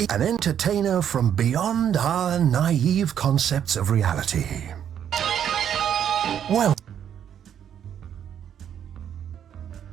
an entertainer from beyond our naive concepts of reality. Well,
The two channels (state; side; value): quieter; left; 9.2 dB